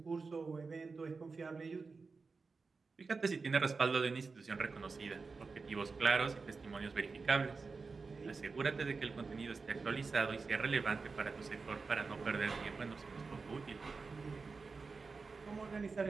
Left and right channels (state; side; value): quieter; left; 4.4 dB